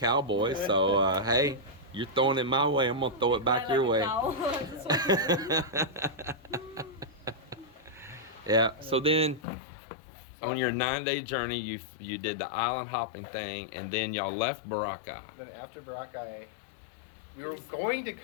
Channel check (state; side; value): drops out; right; at 9.4 s